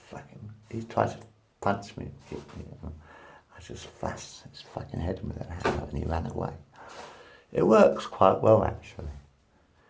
fucking... He tried to punch me, kick me. I just flashed his fucking head with that hammer and he ran away. It works quite well, actually.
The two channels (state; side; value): identical; both; correlation 1.00